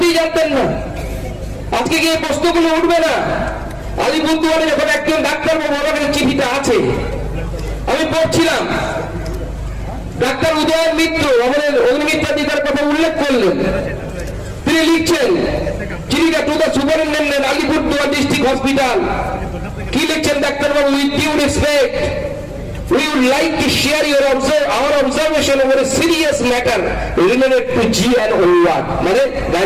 জানতেন না? আজকে কি এই প্রশ্নগুলো উঠবে না? আলিপুরদুয়ারে যখন একজন ডাক্তারবাবু, আমার কাছে চিঠিটা আছে, আমি পড়ছিলাম, ডাক্তার উদয়ন মিত্র আমাদের অগ্নিমিত্রাধিকার কথা উল্লেখ করলেন। তিনি লিখছেন চিঠিটা to the superintendent Alipurduar district hospital. কি লিখছেন ডাক্তারবাবু? With due respect, we would like to share our observation over a serious matter related to G&O ward, মানে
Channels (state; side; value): identical; both; correlation 1.00